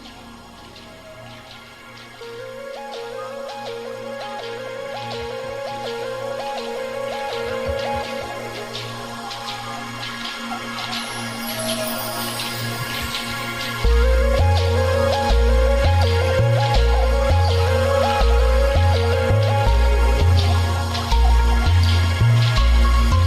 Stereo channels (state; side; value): identical; both; correlation 1.00